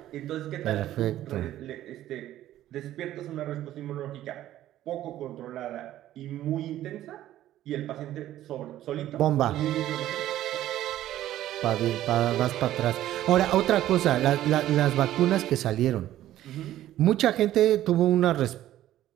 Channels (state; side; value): quieter; left; 13.3 dB